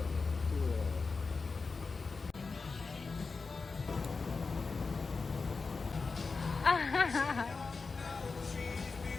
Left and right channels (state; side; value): quieter; right; 4.4 dB